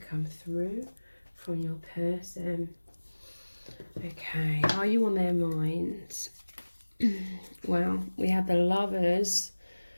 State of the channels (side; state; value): both; inverted; correlation -1.00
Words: through from your person. Okay, are you on their mind? Well, we have the Lovers.